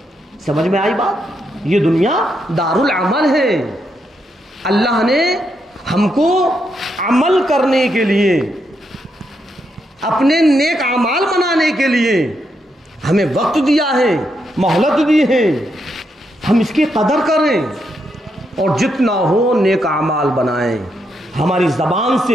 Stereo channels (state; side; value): normal; both; correlation 0.80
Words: سمجھ میں آئی بات؟ یہ دنیا دار العمل ہے۔ اللہ نے ہم کو عمل کرنے کے لیے، اپنے نیک اعمال بنانے کے لیے ہمیں وقت دیا ہے، مہلت دی ہے، ہم اس کی قدر کریں اور جتنا ہو نیک اعمال بنائیں۔ ہماری زبان